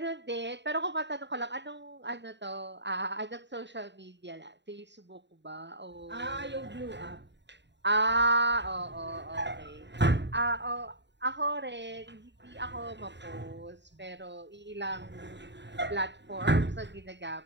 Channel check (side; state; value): left; late; 0.52 ms